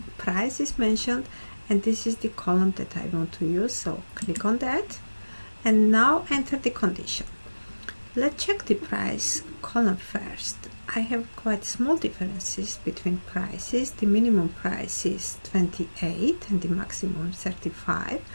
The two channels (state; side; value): inverted; both; correlation -1.00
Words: price is mentioned, and this is the column that I want to use, so click on that and now enter the condition. Let's check the price column first. I have quite small differences between prices. The minimum price is 28 and the maximum 35,